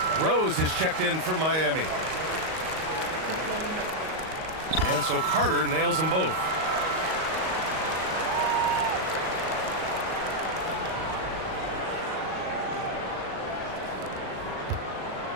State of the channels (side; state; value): left; late; 38 ms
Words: Rose has checked in for Miami. And so Carter nails them both.